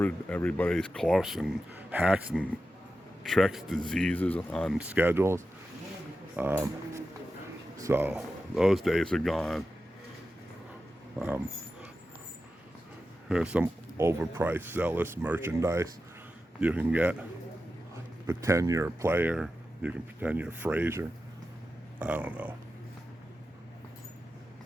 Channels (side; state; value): both; normal; correlation 0.92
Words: everybody's coughs and hacks and tricks diseases on schedules. So those days are gone. Here's some overpriced, zealous merchandise you can get. Pretend you're a player. You can pretend you're Frazier. I don't know.